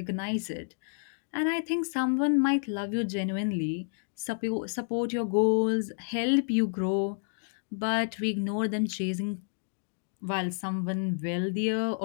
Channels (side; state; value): right; silent; digital silence